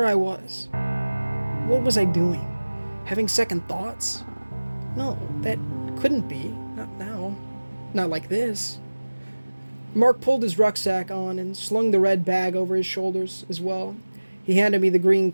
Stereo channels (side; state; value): both; inverted; correlation -1.00